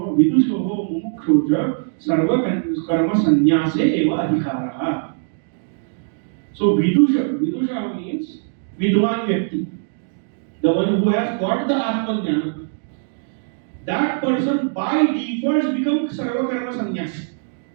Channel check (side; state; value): left; silent; digital silence